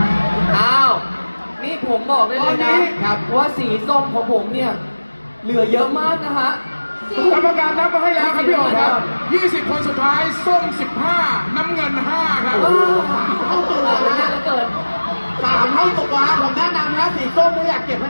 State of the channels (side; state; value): both; inverted; correlation -1.00